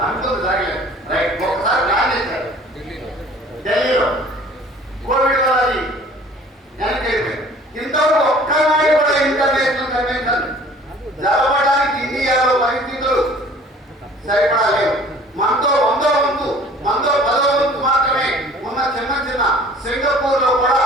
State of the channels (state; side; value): normal; both; correlation 0.50